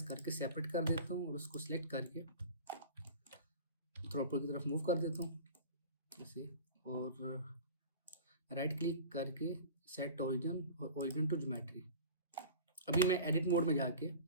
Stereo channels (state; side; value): inverted; both; correlation -0.38